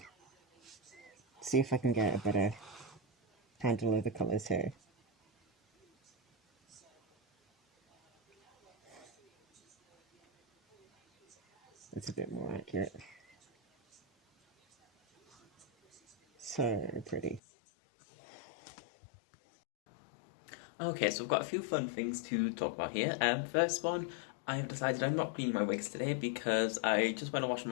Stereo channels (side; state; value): right; drops out; at 17.4 s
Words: See if I can get a better handle of the colours here. It's a bit more accurate. So pretty. Okay, so I've got a few fun things to talk about here. First one, I have decided I'm not cleaning my wigs today because I just went and washed